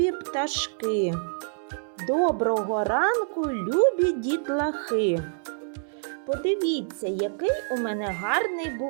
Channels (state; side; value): silent; left; 60 dB below the other